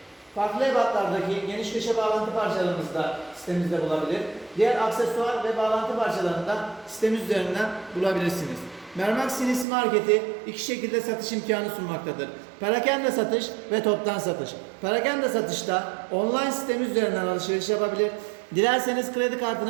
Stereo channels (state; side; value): drops out; left; at 9.7 s